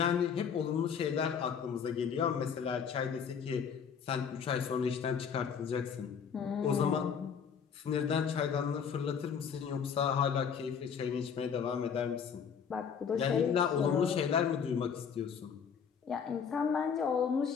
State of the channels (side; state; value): right; quieter; 7.0 dB